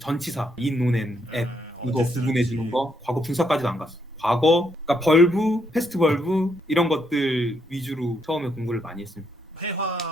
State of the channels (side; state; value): both; normal; correlation 0.75